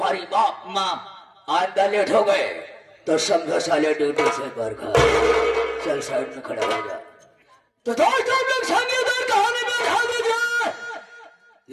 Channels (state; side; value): identical; both; correlation 1.00